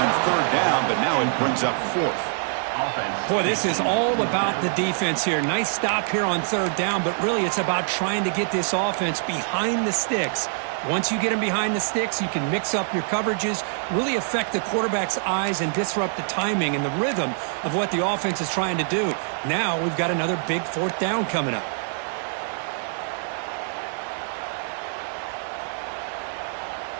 3rd down, but now it brings up 4th. Boy, this is all about the defense here. Nice stop here on 3rd down, but really it's about trying to get this offense behind the sticks. Once you get them behind the sticks, you can mix up your coverages, really affect the quarterback's eyes and disrupt the timing and the rhythm of what the offense is trying to do. Now we've got another big 4th down coming up.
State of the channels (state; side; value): silent; left; digital silence